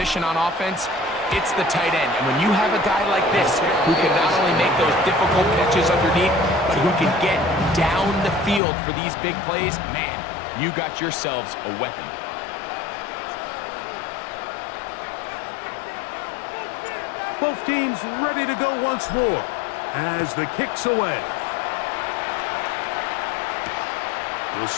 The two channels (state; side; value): drops out; right; at 8.6 s